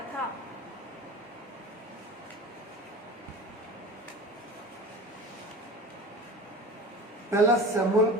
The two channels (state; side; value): normal; both; correlation 0.34